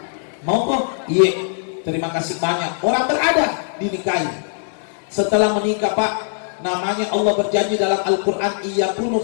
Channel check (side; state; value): right; silent; 63 dB below the other